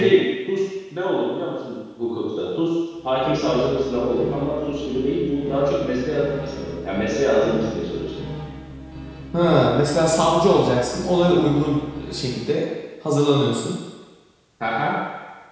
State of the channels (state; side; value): identical; both; correlation 1.00